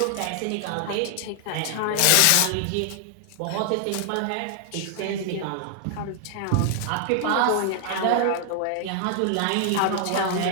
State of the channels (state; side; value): different; both; correlation 0.00